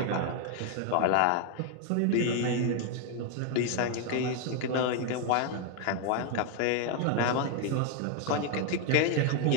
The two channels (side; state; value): both; different; correlation 0.01